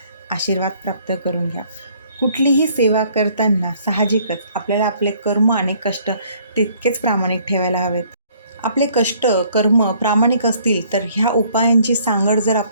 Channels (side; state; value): both; inverted; correlation -0.61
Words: आशीर्वाद प्राप्त करून घ्या. कुठलीही सेवा करताना साहजिकच आपल्याला आपले कर्म आणि कष्ट तितकेच प्रामाणिक ठेवायला हवेत. आपले कष्ट, कर्म प्रामाणिक असतील तर ह्या उपायांची सांगड जर